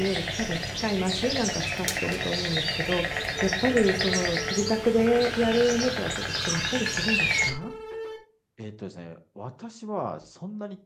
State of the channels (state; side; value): identical; both; correlation 1.00